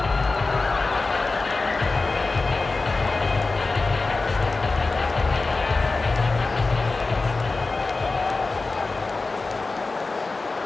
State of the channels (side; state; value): right; quieter; 3.6 dB